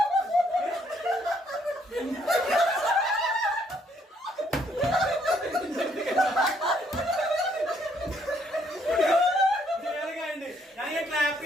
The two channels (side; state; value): both; normal; correlation 0.69